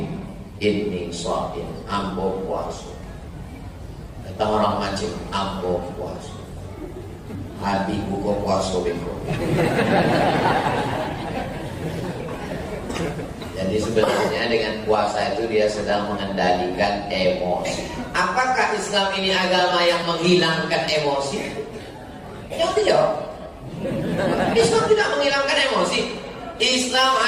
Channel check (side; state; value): both; identical; correlation 1.00